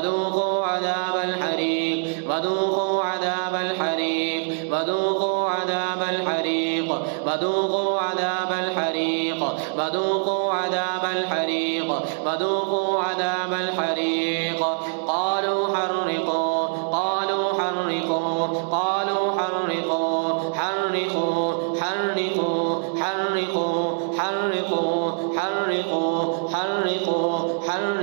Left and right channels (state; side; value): silent; left; 63 dB below the other